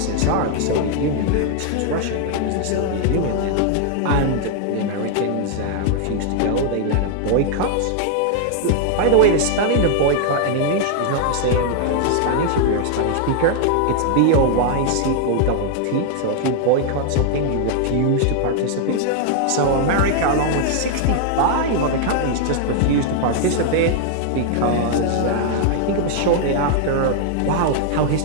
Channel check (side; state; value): both; different; correlation 0.00